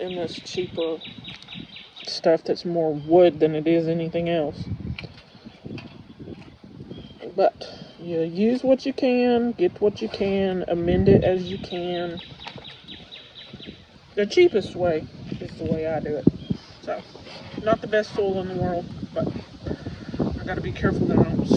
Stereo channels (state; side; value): identical; both; correlation 1.00